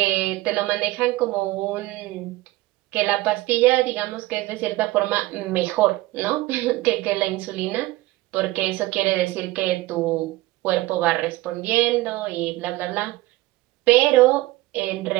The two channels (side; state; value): left; quieter; 18.7 dB